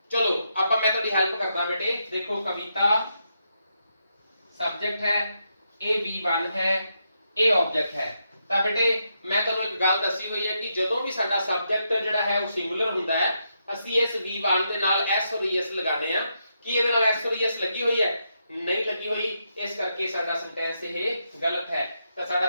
ਚਲੋ ਆਪਾਂ ਮੈਂ ਤੁਹਾਡੀ ਹੈਲਪ ਕਰਦਾ ਬੇਟੇ। ਦੇਖੋ ਕਵਿਤਾ ਸਬਜੈਕਟ ਹੈ, ਇਹ V1 ਹੈ, ਇਹ ਆਬਜੈਕਟ ਹੈ। ਤਾਂ ਬੇਟੇ ਮੈਂ ਤੁਹਾਨੂੰ ਇੱਕ ਗੱਲ ਦੱਸੀ ਹੋਈ ਹੈ ਕਿ ਜਦੋਂ ਵੀ ਸਾਡਾ ਸਬਜੈਕਟ ਜਿਹੜਾ ਹੈ ਉਹ ਸਿੰਗੂਲਰ ਹੁੰਦਾ ਹੈ ਅਸੀਂ ਇਸ V1 ਦੇ ਨਾਲ S ਔਰ ES ਲਗਾਣੇ ਆ। ਕੀ ਇਹਦੇ ਨਾਲ S ਔਰ ES ਲੱਗੀ ਹੋਈ ਹੈ? ਨਹੀਂ ਲੱਗੀ ਹੋਈ, ਇਸ ਕਰਕੇ ਸਾਡਾ ਸੈਂਟੈਂਸ ਇਹ ਗਲਤ ਹੈ। ਤਾਂ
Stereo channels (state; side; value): inverted; both; correlation -0.82